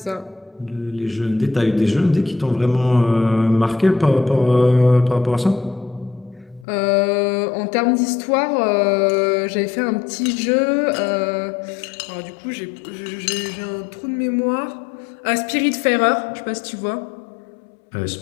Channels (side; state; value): right; drops out; at 6.7 s